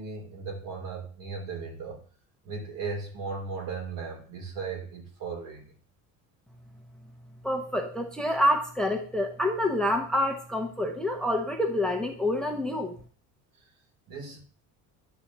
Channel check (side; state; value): both; normal; correlation 0.62